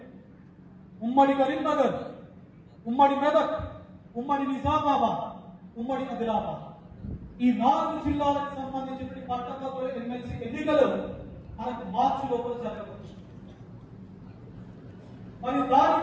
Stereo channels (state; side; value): identical; both; correlation 1.00